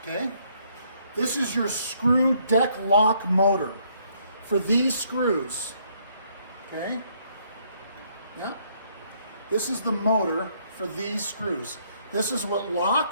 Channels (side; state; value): both; inverted; correlation -0.68